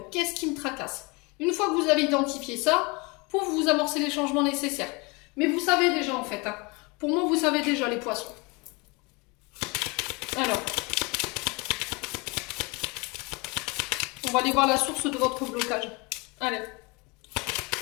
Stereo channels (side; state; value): right; quieter; 27.8 dB